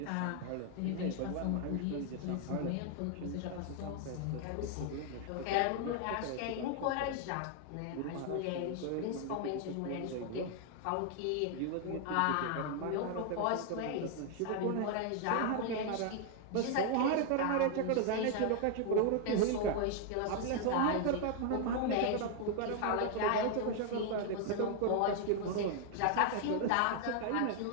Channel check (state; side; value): different; both; correlation 0.00